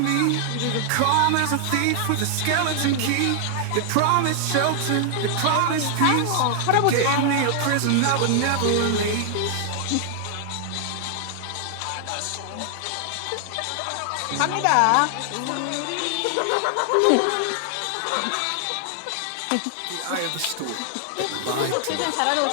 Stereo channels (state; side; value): different; both; correlation 0.00